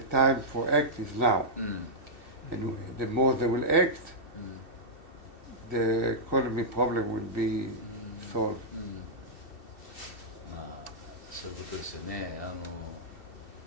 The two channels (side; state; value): right; late; 2.7 ms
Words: time for act is now. And the more they will act, the economy problem will be solved. そういうことですよね。